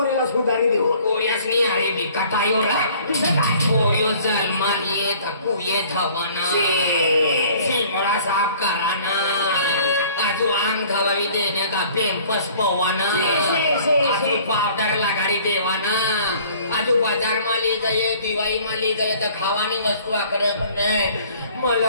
सुधारी देऊ पोऱ्यासनी अरे बी कटायोला पोऱ्यो जन्मान येत कुयेत हवाना शिमळा साफ कराना आजू अंग धवावी देने का पेम्पस पवाना आजू पावडर लगाडी देवाना आजू बाजार में ली गए दिवाळी में ली गए तो खावानी वस्तू आकडे पण नाही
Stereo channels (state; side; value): inverted; both; correlation -0.53